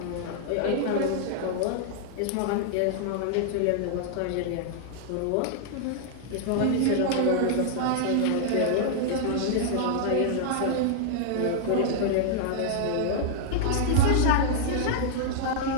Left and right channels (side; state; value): both; different; correlation -0.01